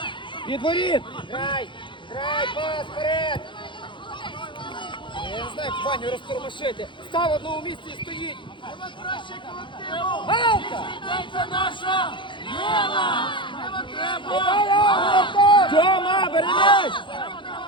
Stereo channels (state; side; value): late; right; 0.23 ms